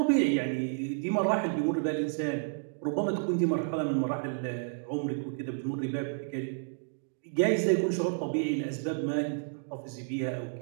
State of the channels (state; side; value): silent; left; digital silence